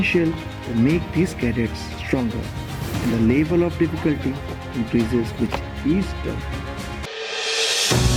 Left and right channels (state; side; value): identical; both; correlation 1.00